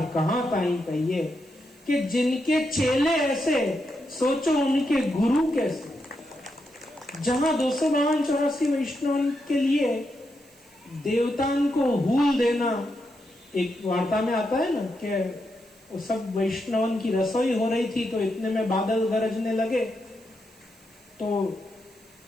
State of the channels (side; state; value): right; noise; hiss, 28 dB below the sound